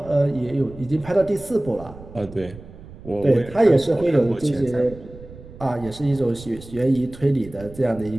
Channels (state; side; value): noise; right; rumble, 17 dB below the sound